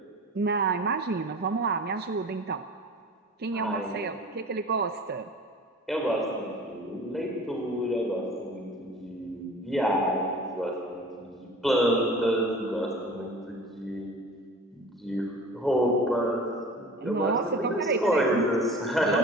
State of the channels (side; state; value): both; normal; correlation 0.41